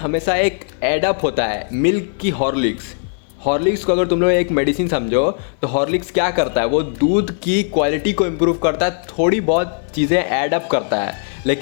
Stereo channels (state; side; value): silent; right; digital silence